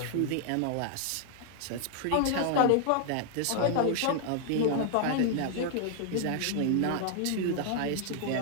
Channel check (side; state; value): both; different; correlation 0.00